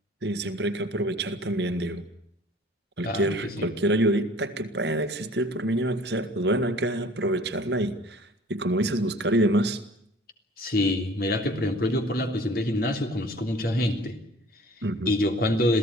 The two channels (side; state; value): both; normal; correlation 0.49